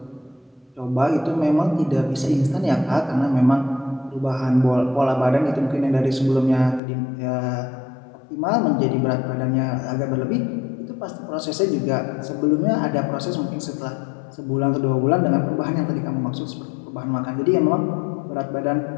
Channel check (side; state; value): right; drops out; at 6.8 s